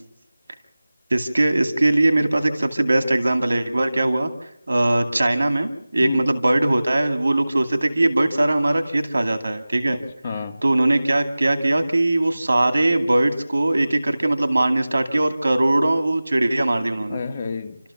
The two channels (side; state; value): both; inverted; correlation -0.98